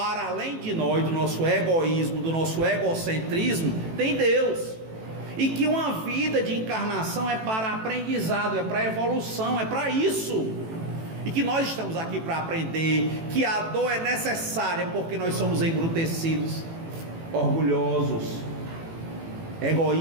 além de nós, do nosso egoísmo, do nosso egocentrismo, tem Deus, e que uma vida de encarnação é para aprendizado, é para evolução, é para isso. E que nós estamos aqui para aprender que a dor é necessária, porque nós somos embrutecidos, orgulhosos,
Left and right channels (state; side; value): late; left; 18 ms